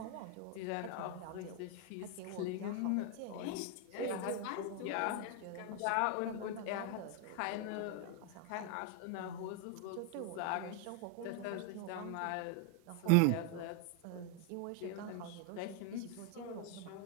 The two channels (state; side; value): different; both; correlation 0.01